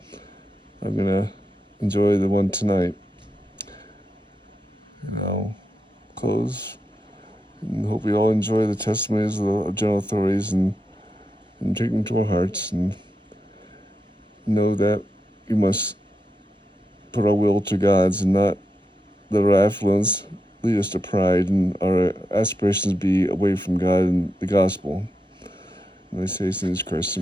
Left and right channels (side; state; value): both; normal; correlation 0.86